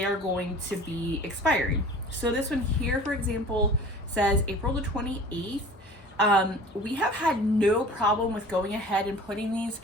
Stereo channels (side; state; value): both; normal; correlation 0.43